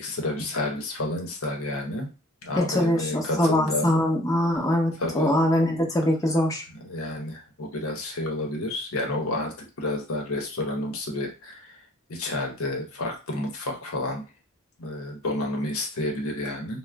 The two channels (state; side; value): normal; both; correlation 0.52